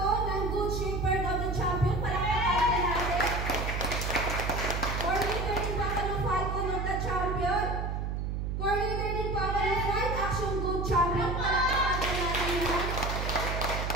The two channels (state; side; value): noise; right; hum, 2 dB below the sound